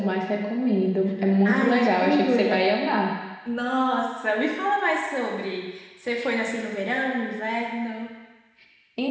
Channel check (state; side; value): identical; both; correlation 1.00